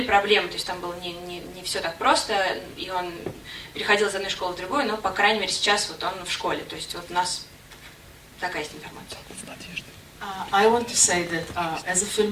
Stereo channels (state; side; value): identical; both; correlation 1.00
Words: проблемы, то есть там было не все так просто, и он переходил из одной школы в другую, но, по крайней мере, сейчас вот он в школе. То есть вот у нас такая есть информация. I want to say that as a